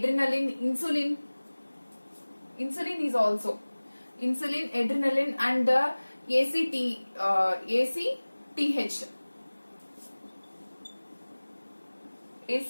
insulin. Insulin is also insulin, adrenaline, and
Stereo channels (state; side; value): inverted; both; correlation -1.00